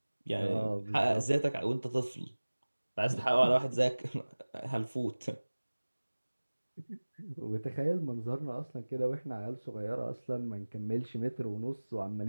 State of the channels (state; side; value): inverted; both; correlation -1.00